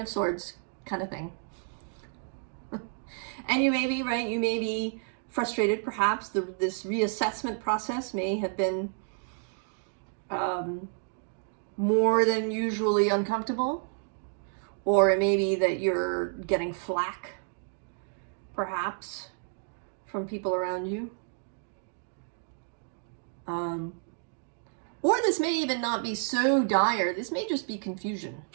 of Swords kind of thing, and you may be frustrated, perhaps this reassessment process may have been more than usually uncomfortable, or it may be that you're getting flack, perhaps, from people around you. Or this may even not be so dire. This may just be confusion.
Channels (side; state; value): left; silent; 58 dB below the other